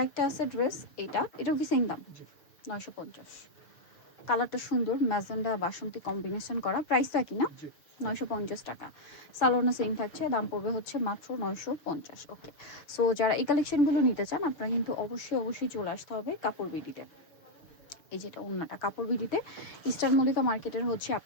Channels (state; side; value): late; right; 6.6 ms